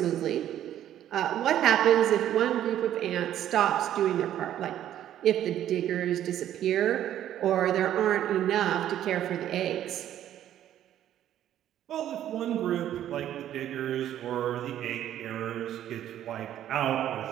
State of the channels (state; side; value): quieter; left; 11.5 dB